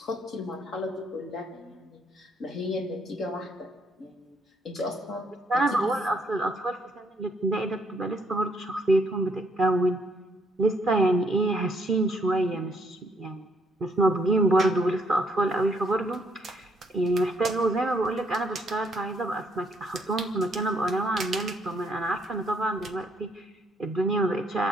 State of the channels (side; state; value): both; normal; correlation 0.70